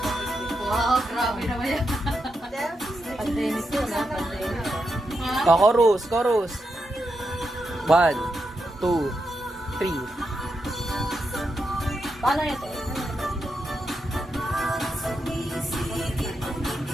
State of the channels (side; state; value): both; normal; correlation 0.85